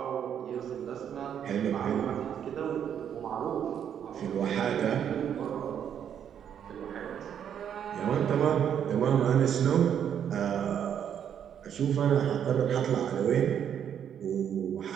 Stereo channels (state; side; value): quieter; left; 8.9 dB